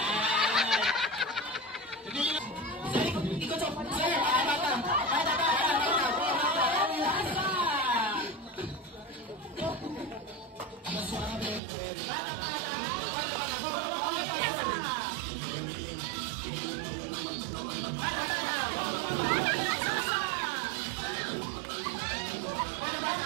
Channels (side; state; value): left; drops out; at 11.6 s